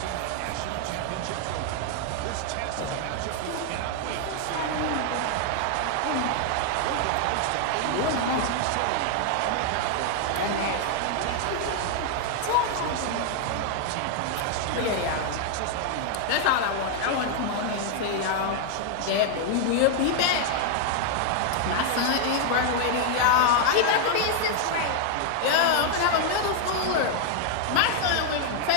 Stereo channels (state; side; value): different; both; correlation 0.00